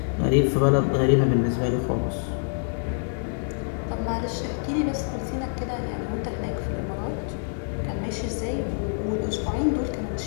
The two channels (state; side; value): silent; right; 61 dB below the other